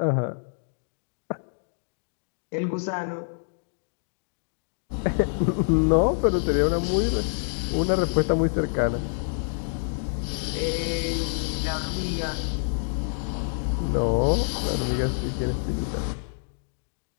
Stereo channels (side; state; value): right; silent; digital silence